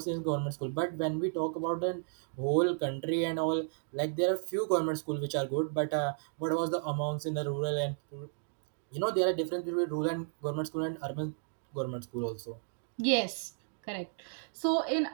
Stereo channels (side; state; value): left; silent; digital silence